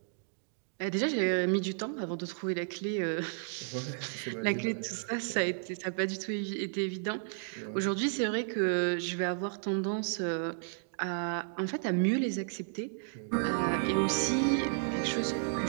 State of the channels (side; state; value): left; silent; digital silence